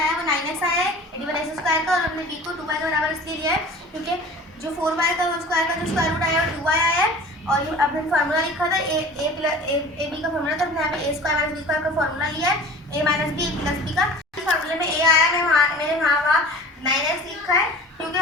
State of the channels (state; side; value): normal; both; correlation 0.41